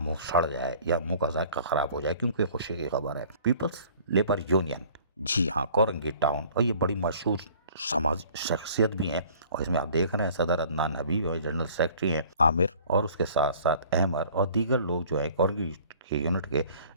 سڑ جائے یا منہ کا ذائقہ خراب ہو جائے، کیونکہ خوشی کی خبر ہے۔ پیپلز لیبر یونین، جی ہاں، کورنگی ٹاؤن، اور یہ بڑی مشہور سماجی شخصیت بھی ہیں، اور اس میں آپ دیکھ رہے ہیں صدر عدنان حبیب اور جنرل سیکرٹری ہیں عامر، اور اس کے ساتھ ساتھ احمر اور دیگر لوگ جو ہیں کورنگی کے یونٹ کے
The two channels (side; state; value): both; inverted; correlation -0.52